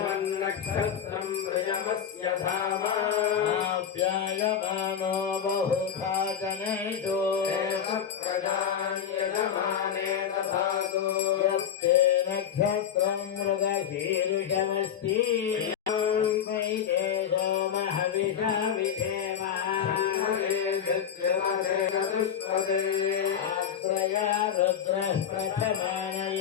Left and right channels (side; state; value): right; quieter; 8.5 dB